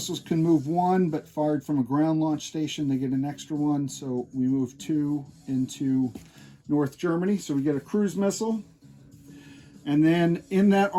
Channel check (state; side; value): identical; both; correlation 1.00